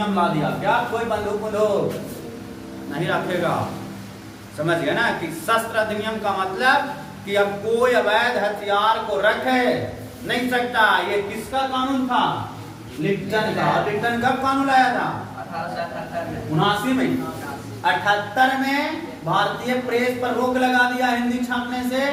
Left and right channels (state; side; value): identical; both; correlation 1.00